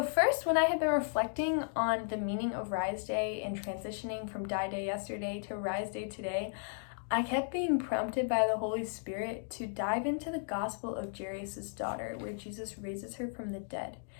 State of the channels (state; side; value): silent; right; digital silence